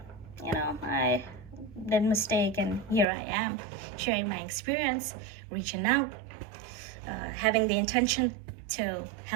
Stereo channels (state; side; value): drops out; left; at 3.1 s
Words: I did a mistake, and here I am sharing my experience, reaching out, having the intention to